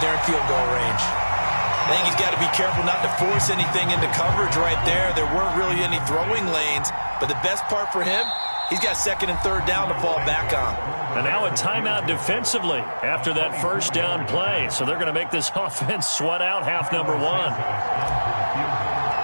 they're in field goal range. I think he's got to be careful not to force anything into coverage right there. There weren't really any throwing lanes, but the best part for him, he's got second and third down to fall back on. And now a timeout defensively after that first down play. So they're going to make this offense sweat out half number one.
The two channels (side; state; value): both; inverted; correlation -1.00